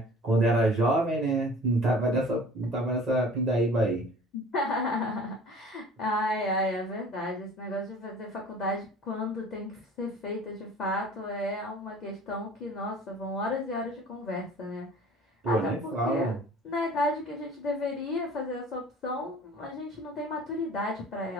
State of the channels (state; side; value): normal; both; correlation 0.46